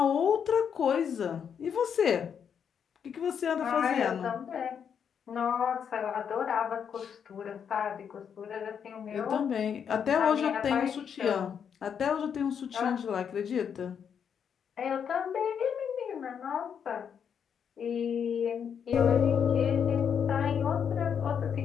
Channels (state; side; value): quieter; right; 7.6 dB